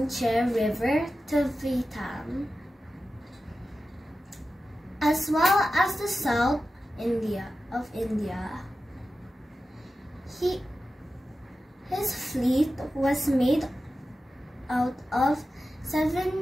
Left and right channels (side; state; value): both; normal; correlation 0.93